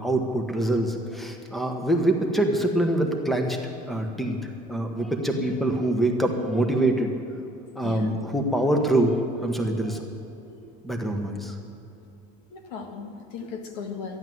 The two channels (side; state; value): both; normal; correlation 0.64